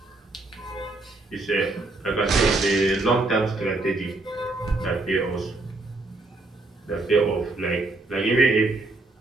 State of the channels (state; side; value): quieter; left; 3.1 dB